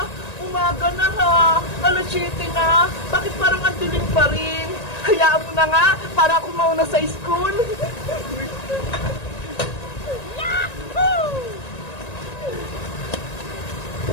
umaga na ha. Alas 7 na. Bakit parang ang dilim pa rin? Hayaan mo na nga, para ako mauna sa school. Yahoo!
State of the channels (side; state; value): right; late; 1.9 ms